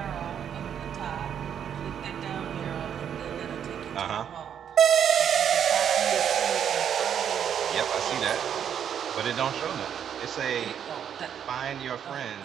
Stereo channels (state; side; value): quieter; left; 8.7 dB